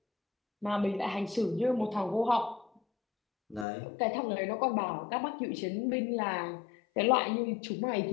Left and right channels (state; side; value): drops out; right; at 3.7 s